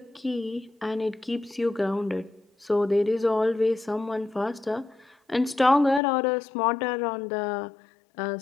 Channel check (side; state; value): right; drops out; at 6.0 s